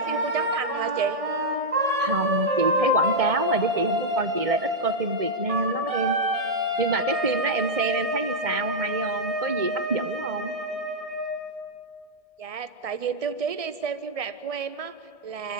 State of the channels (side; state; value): left; late; 1.6 ms